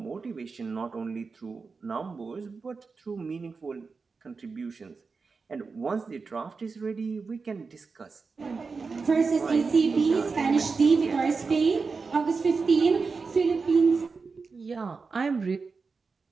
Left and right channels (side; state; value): left; quieter; 4.6 dB